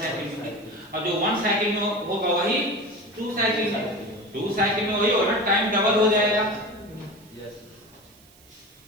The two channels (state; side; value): noise; right; hiss, 27 dB below the sound